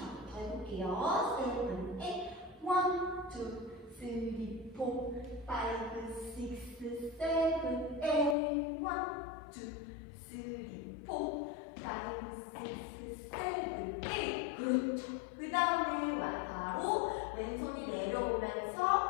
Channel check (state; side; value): drops out; right; at 8.3 s